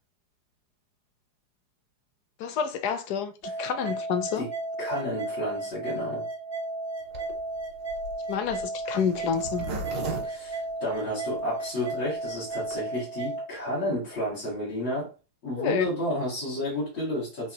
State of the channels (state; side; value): late; right; 4.8 ms